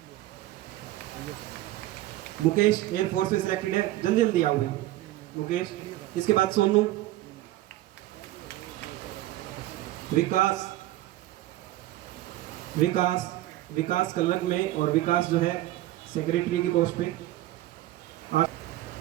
मुकेश एयरफोर्स में सिलेक्टेड है, जल्दी जल्दी आओ मुकेश। इसके बाद सोनू, विकास, विकास कल्लक में, और विकास जो है सेक्रेटरी की पोस्ट पे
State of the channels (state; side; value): quieter; left; 15.8 dB